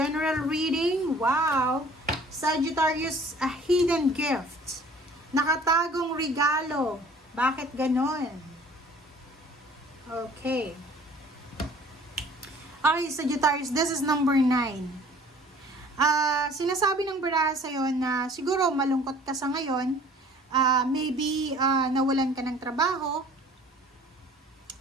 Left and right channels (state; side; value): normal; both; correlation 0.51